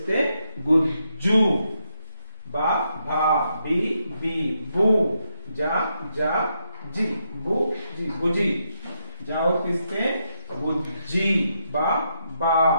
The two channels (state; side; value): inverted; both; correlation -0.80